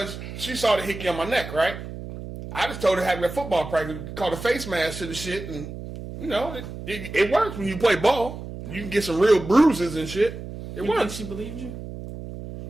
she saw the hickey on my neck, right? I just told her having a football practice, called a face mask to the shit, and you know it works when you play ball. You can get some real bruises and shit. It You think works. she believed you?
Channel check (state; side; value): noise; right; hum, 10 dB below the sound